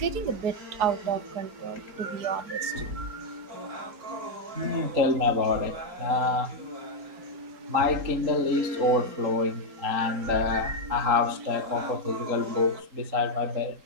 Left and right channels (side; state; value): left; late; 3.8 ms